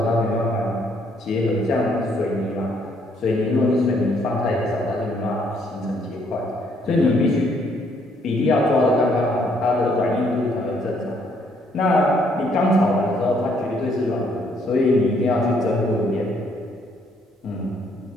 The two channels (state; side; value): normal; both; correlation 0.68